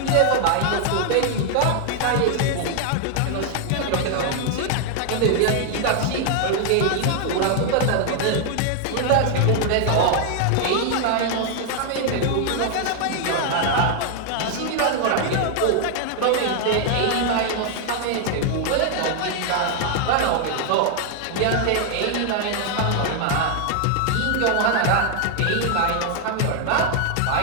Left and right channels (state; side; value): different; both; correlation 0.00